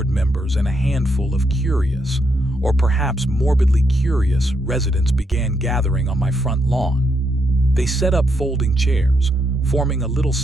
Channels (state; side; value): normal; both; correlation 0.78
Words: members and a handful of curious, or perhaps morbidly curious, residents began gathering on my front lawn. They set up folding chairs, forming a little